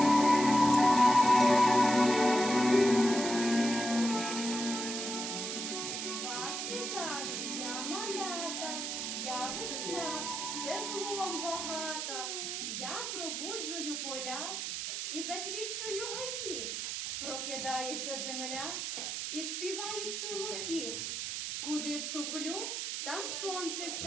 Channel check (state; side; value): noise; right; hiss, 3 dB below the sound